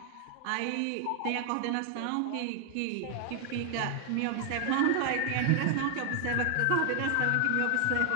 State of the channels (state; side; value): different; both; correlation 0.00